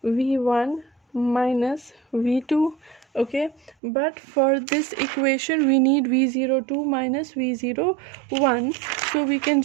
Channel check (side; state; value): left; drops out; at 3.8 s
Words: V1 minus V2. Okay, but for this equation we need V02 minus V01, so we can